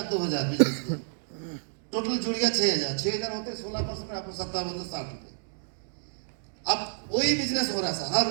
2000 बिजनेस किया, टोटल जुड़ गया 6000 होते 16% में आपको 5760 रुपए। अब वही बिजनेस हो रहा है सर हर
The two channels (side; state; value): left; silent; digital silence